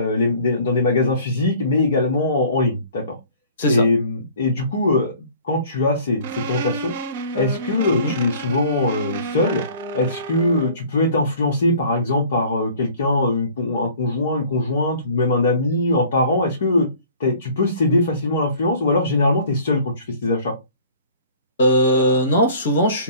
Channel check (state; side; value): inverted; both; correlation -0.50